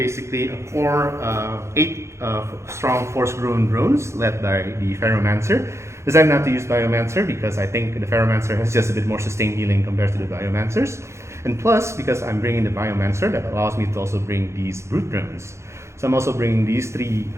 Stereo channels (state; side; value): late; left; 0.13 ms